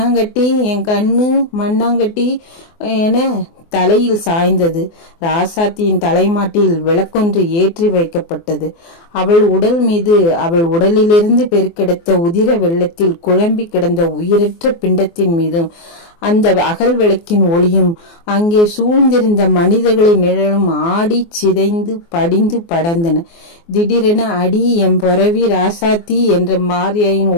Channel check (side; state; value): right; late; 24 ms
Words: என் கண்ணு மண்ணாங்கட்டி என தலையில் சாய்ந்தது. ராசாத்தியின் தலைமாட்டில் விளக்கொன்று ஏற்றி வைக்கப்பட்டது. அவள் உடல் மீது, அவள் உடலிலிருந்து பெருக்கெடுத்த உதிர வெள்ளத்தில் குழம்பி கிடந்த உயிரற்ற பிண்டத்தின் மீதும் அந்த அகல் விளக்கின் ஒளியும் அங்கே சூழ்ந்திருந்த மனிதர்களின் நிழலும் ஆடி சிதைந்து படிந்து படர்ந்தன. திடீரென அடி எம் பொறவி ராசாத்தி என்ற மாரியாயின்